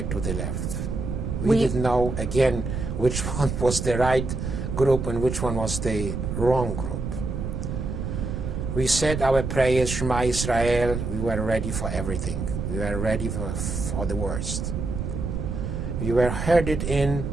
to the left. We didn't know, again, which one was the right group and which one was the wrong group. We said our prayers, Shema Israel. We were ready for everything. We were ready for the worst. We were headed in,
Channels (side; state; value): right; noise; rumble, 3 dB below the sound